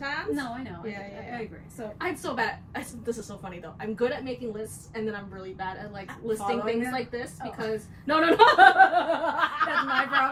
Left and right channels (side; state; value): both; identical; correlation 1.00